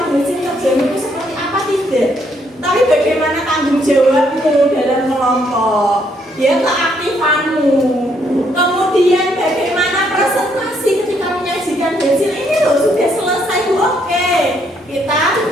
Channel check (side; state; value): both; normal; correlation 0.71